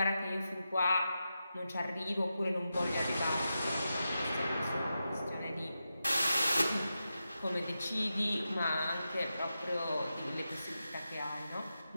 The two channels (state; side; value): inverted; both; correlation -0.90